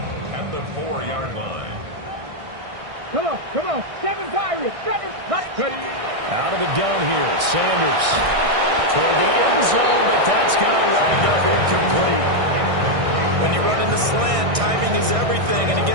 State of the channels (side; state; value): left; late; 1.6 ms